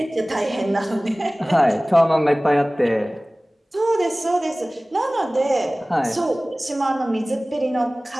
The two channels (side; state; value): both; normal; correlation 0.98